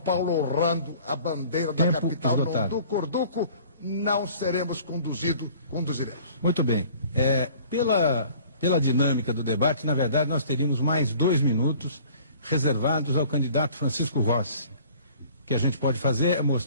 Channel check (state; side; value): inverted; both; correlation -0.50